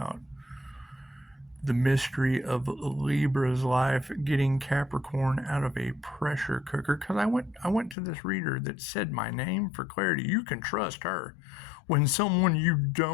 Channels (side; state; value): right; drops out; at 8.0 s